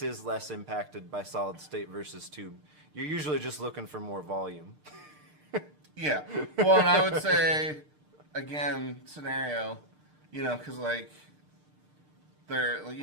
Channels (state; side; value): late; left; 6.6 ms